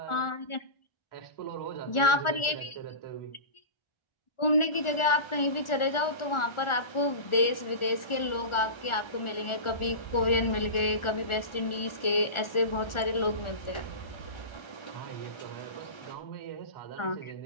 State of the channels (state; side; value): late; right; 1.4 ms